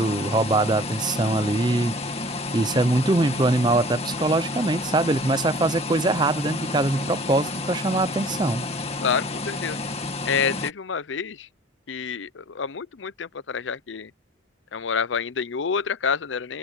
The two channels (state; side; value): normal; both; correlation 0.46